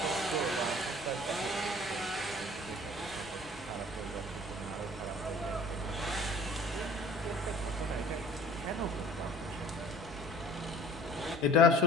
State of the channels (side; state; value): both; normal; correlation 0.49